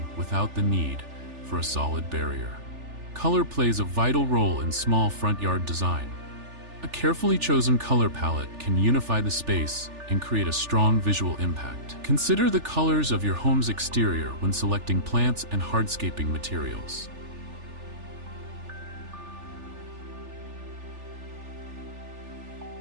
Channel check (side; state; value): left; late; 3.4 ms